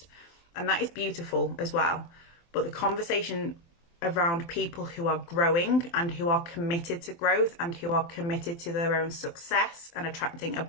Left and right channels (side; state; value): right; late; 24 ms